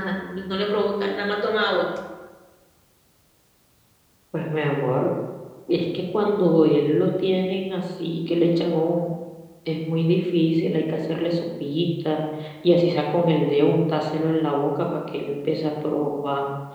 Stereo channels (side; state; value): both; identical; correlation 1.00